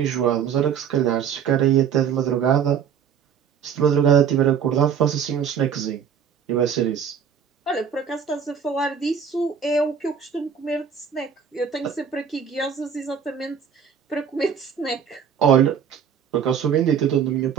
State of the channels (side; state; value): left; quieter; 7.5 dB